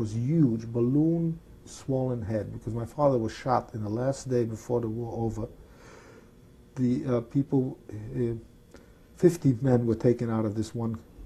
huge, balloon swollen head, because my father was shot in the last day before the war over. The people, 50 men were taken out of this one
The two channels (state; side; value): identical; both; correlation 1.00